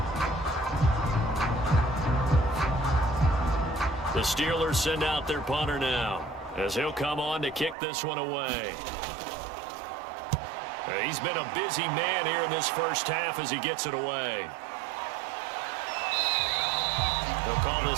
The Steelers send out their punter now as he'll come on to kick this one away. He's been a busy man here in this first half as he gets it away. They'll call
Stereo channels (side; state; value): left; drops out; at 7.8 s